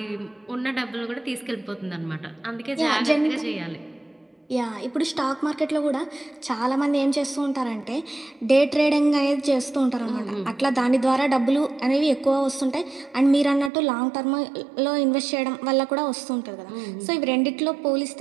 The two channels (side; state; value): left; drops out; at 13.7 s